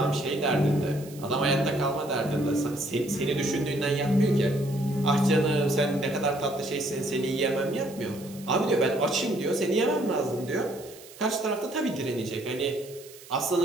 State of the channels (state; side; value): noise; right; hiss, 19 dB below the sound